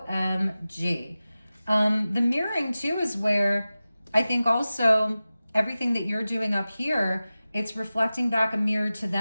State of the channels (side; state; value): both; inverted; correlation -0.96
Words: The mirroring too is where I think also everything that you're doing up here, it's reflecting back a mirror to